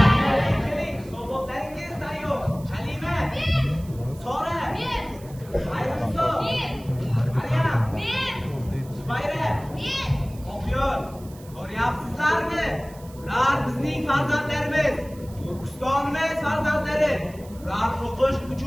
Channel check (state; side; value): noise; right; hiss, 23 dB below the sound